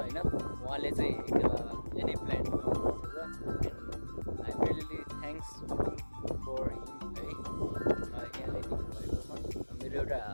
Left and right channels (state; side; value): inverted; both; correlation -1.00